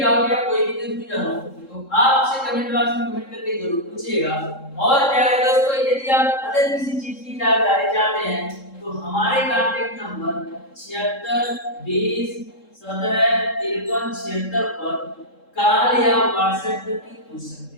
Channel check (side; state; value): right; late; 3.7 ms